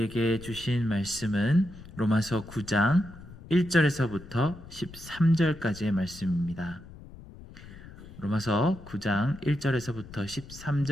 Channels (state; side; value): noise; left; rumble, 17 dB below the sound